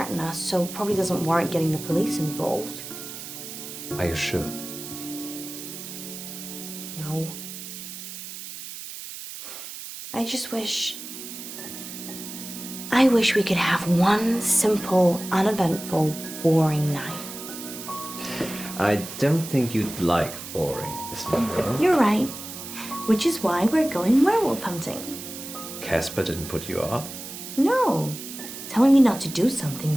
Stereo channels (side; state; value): right; noise; hiss, 10 dB below the sound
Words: us, so probably doesn't warrant getting the police involved. Are you sure? No. I just wish... I wish we could have one simple, uneventful, boring night. I don't think you'd like boring, Miss Munro. You're right. Which is why we're going werewolf hunting. Casper didn't put you off? No. Telling me not to do something